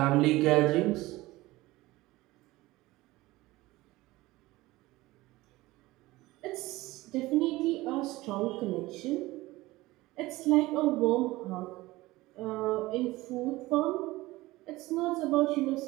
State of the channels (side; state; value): left; quieter; 19.1 dB